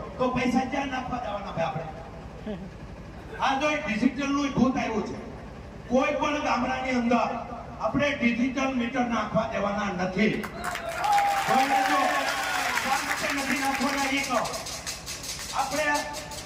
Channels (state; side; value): identical; both; correlation 1.00